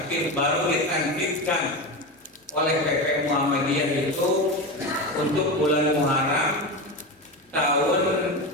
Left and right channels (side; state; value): both; normal; correlation 0.21